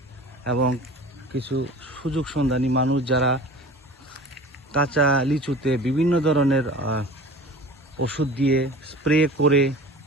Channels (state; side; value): normal; both; correlation 0.40